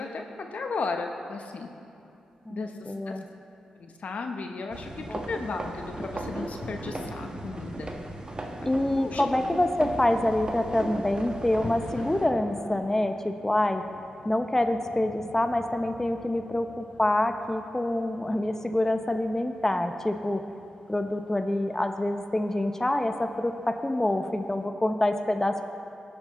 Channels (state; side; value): normal; both; correlation 0.96